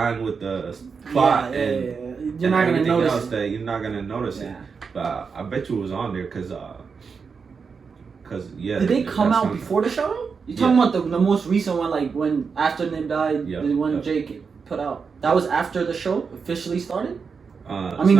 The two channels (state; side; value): quieter; left; 5.5 dB